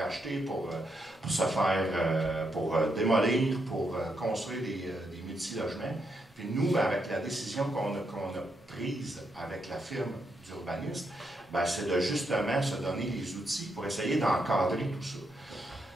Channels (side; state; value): both; normal; correlation 0.80